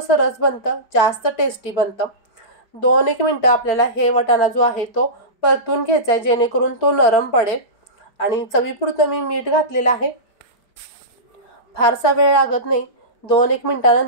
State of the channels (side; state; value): right; late; 5.1 ms